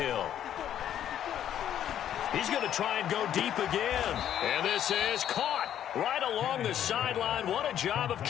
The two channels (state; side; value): quieter; right; 10.5 dB